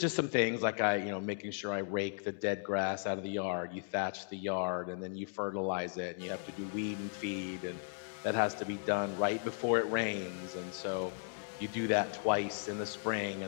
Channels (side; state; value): right; silent; digital silence